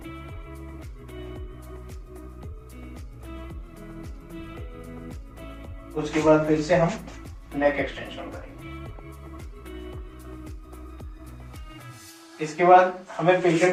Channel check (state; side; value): identical; both; correlation 1.00